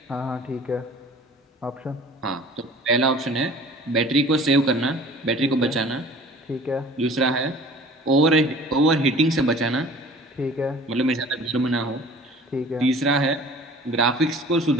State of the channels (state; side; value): normal; both; correlation 0.46